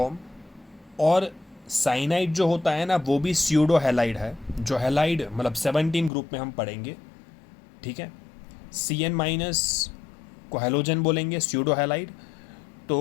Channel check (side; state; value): right; drops out; at 6.1 s